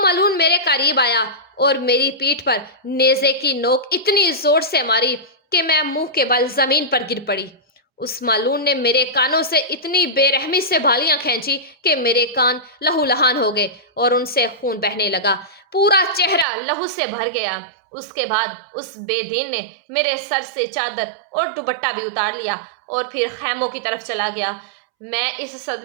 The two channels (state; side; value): drops out; left; at 16.4 s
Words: मेरे करीब आया और मेरी पीठ पर नेज़े की नोक इतनी जोर से मारी कि मैं मुंह के बल जमीन पर गिर पड़ी। उस मालून ने मेरे कानों से इतनी बेरहमी से बालियां खींची कि मेरे कान लहूलुहान हो गए और उनसे खून बहने लगा। पूरा चेहरा लहू से भर गया। उसके बाद उस बेदीन ने मेरे सर से चादर और दुपट्टा भी उतार लिया और फिर खैमों की तरफ चला गया। मैं इस